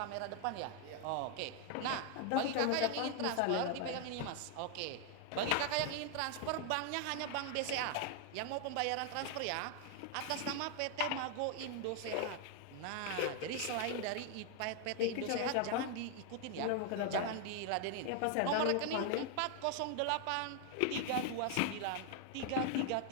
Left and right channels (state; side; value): different; both; correlation 0.00